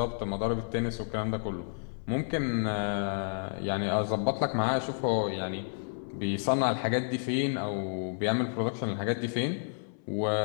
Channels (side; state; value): right; silent; 57 dB below the other